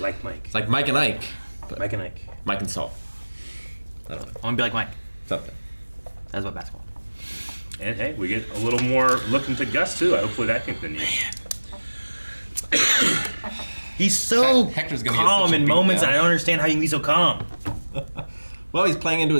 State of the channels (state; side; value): inverted; both; correlation -1.00